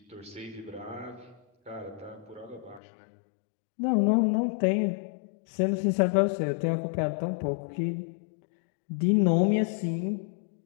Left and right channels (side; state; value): right; drops out; at 2.8 s